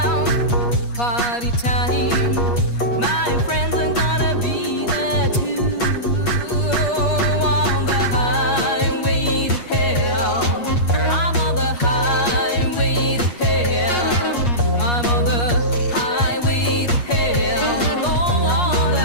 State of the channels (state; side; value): late; right; 8.4 ms